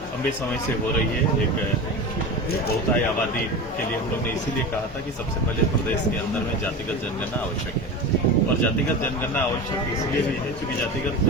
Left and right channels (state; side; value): normal; both; correlation 0.28